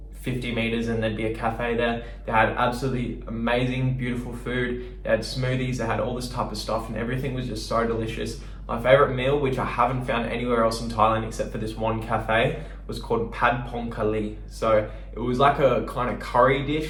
50 meters and there'd be a cafe there. They had absolutely amazing, beautiful food. They had smoothies, they had all this type of stuff, and everything was just so delicious. My favorite meal, which I haven't found anywhere else in Thailand except for this one cafe, was called Pad Pong Kali. So it was like a kind of curry dish.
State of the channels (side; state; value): both; identical; correlation 1.00